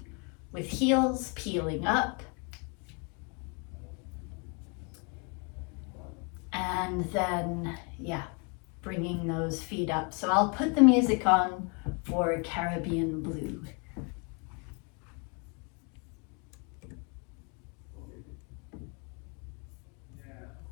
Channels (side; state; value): right; quieter; 34.7 dB